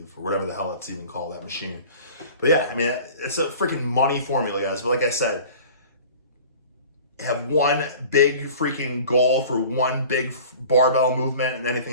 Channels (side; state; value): both; inverted; correlation -0.43